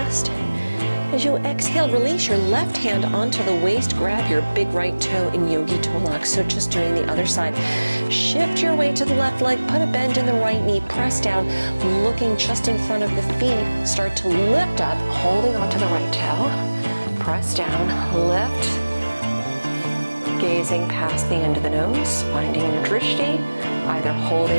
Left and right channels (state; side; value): inverted; both; correlation -1.00